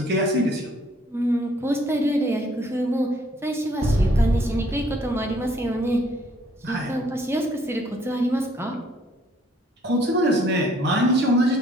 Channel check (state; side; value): normal; both; correlation 0.63